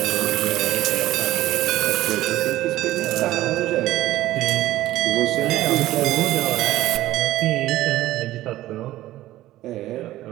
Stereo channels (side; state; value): left; quieter; 15.4 dB